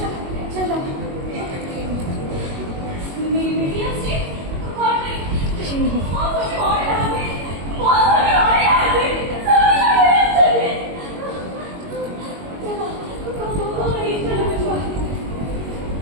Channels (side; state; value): left; late; 21 ms